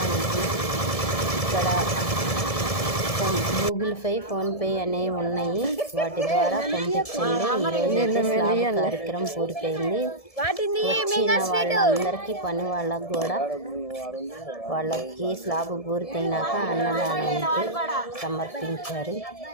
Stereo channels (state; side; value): late; right; 1.7 ms